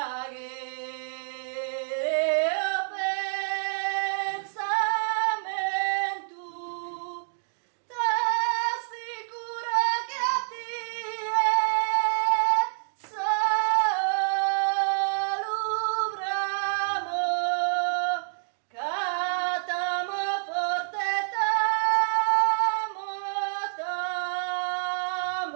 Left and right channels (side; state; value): left; silent; digital silence